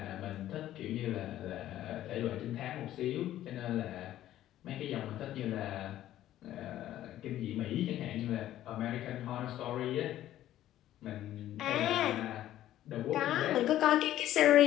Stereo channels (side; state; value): right; quieter; 13.1 dB